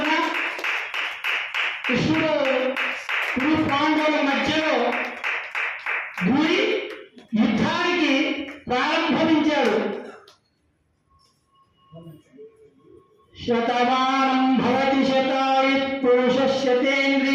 కృష్ణుడు కురు పాండవుల మధ్యలో దూరి యుద్ధానికి ప్రారంభించాడు. శతమానం భవతి శతాయుః పురుషः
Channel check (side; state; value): both; identical; correlation 1.00